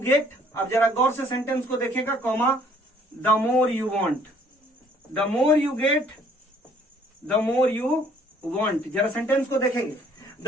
अब जरा गौर से सेंटेंस को देखेगा, comma, the more you want, the more you get, the more you want. जरा सेंटेंस को देखेंगे,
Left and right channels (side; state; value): both; normal; correlation 0.60